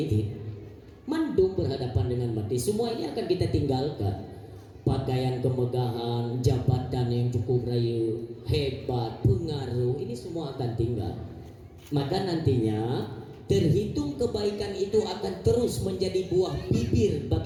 sih. Mandum berhadapan dengan mati. Semua ini akan kita tinggalkan. Pakaian kemegahan, jabatan yang cukup raya, hebat, pengaruh, ini semua akan tinggal. Maka nantinya terhitung kebaikan itu akan terus menjadi buah bibir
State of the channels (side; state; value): both; identical; correlation 1.00